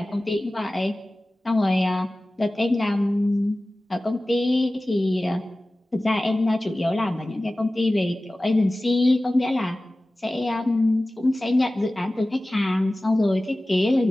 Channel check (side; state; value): both; normal; correlation 0.97